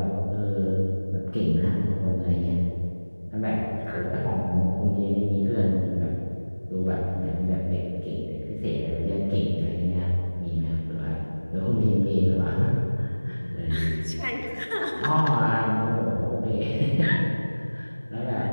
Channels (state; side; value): inverted; both; correlation -1.00